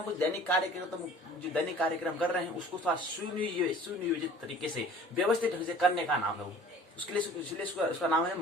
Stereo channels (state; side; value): normal; both; correlation 0.47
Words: कुछ दैनिक कार्यक्रम, तो जो दैनिक कार्यक्रम कर रहे हैं उसको थोड़ा सुनियोजित तरीके से, व्यवस्थित ढंग से करने का नाम है वो। उसके लिए इसलिए उसका नाम है